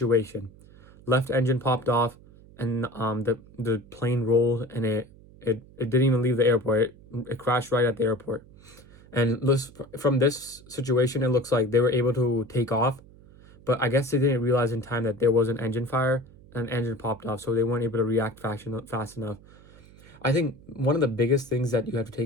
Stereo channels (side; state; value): right; noise; hum, 23 dB below the sound